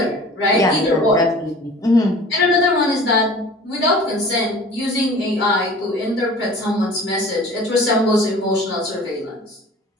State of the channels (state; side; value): normal; both; correlation 0.44